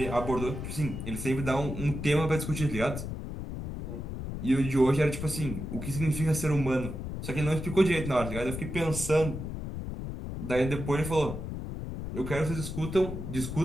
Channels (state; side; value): noise; left; rumble, 6 dB below the sound